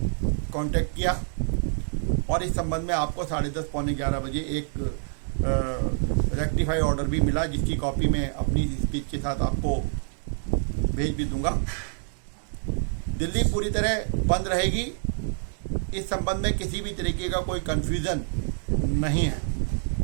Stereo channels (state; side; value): silent; left; 60 dB below the other